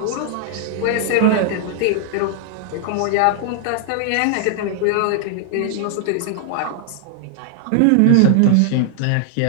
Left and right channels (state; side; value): different; both; correlation 0.00